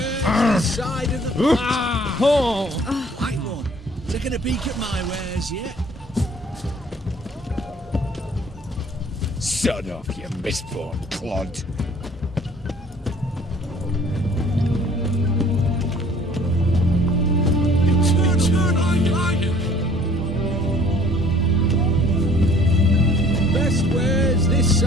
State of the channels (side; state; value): both; normal; correlation 0.55